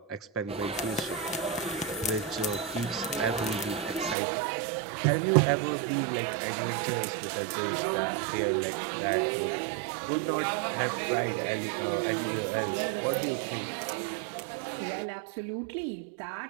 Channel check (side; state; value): left; drops out; at 4.2 s